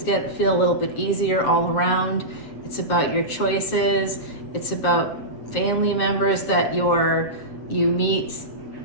feel a little bit easier all around. It's about your choices. It's about family members that you meet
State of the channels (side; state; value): right; late; 7.7 ms